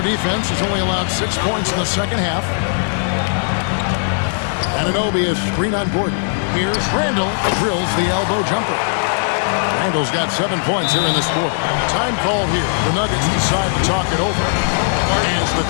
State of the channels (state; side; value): silent; right; digital silence